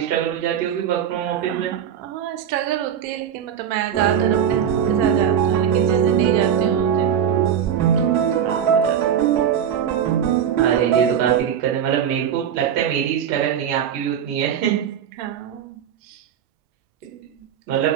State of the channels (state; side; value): quieter; left; 8.8 dB